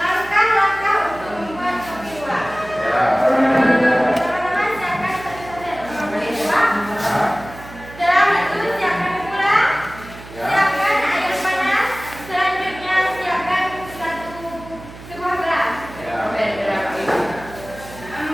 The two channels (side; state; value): right; noise; hum, 16 dB below the sound